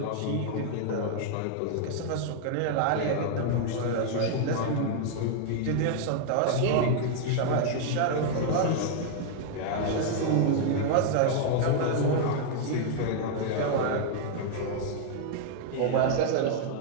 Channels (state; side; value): different; both; correlation 0.00